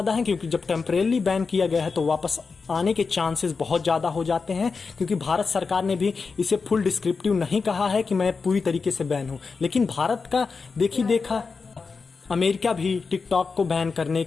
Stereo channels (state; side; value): quieter; right; 4.8 dB